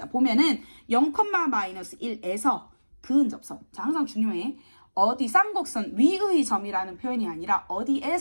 보면은 0,-1에서 그은접선. 자, 항상 중요해. 어디 쌍곡선 위의 점이라는 표현이 아니라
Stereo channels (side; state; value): both; inverted; correlation -1.00